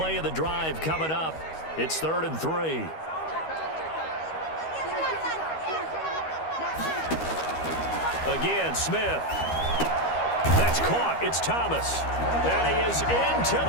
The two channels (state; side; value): late; right; 13 ms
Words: of the drive coming up. It's 3rd and 3. Again, Smith. That's caught. It's Thomas. And he is into